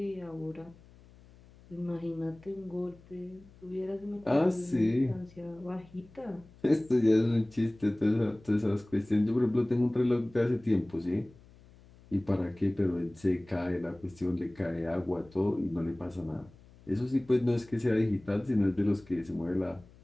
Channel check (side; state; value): left; noise; hum, 24 dB below the sound